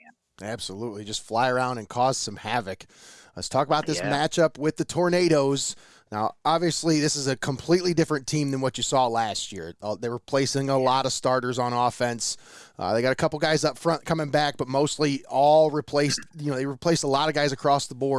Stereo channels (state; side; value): identical; both; correlation 1.00